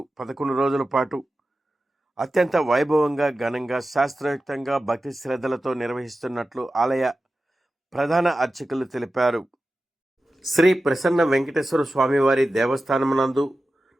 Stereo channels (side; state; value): both; normal; correlation 0.94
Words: 11 రోజుల పాటు అత్యంత వైభవంగా ఘనంగా శాస్త్రయుక్తంగా భక్తి శ్రద్ధలతో నిర్వహిస్తున్నట్లు ఆలయ ప్రధాన అర్చకులు తెలిపారు. శ్రీ ప్రసన్న వెంకటేశ్వర స్వామివారి దేవస్థానమునందు